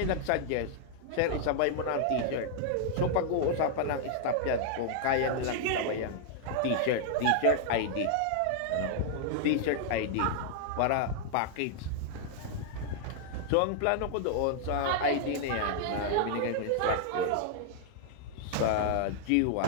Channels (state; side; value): different; both; correlation -0.01